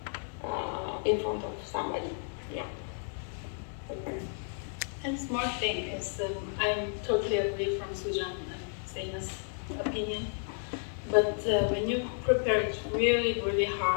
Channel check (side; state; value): right; silent; 56 dB below the other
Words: in front of somebody. Yeah. Okay. And smart thing is, I'm totally agree from Sujan and Zeina's opinion. But when you prepare it really, really